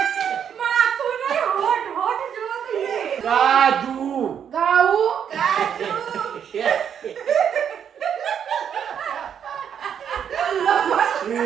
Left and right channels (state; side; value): quieter; left; 8.3 dB